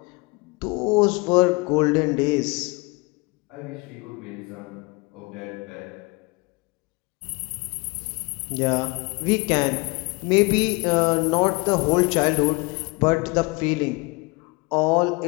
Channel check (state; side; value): quieter; right; 27.2 dB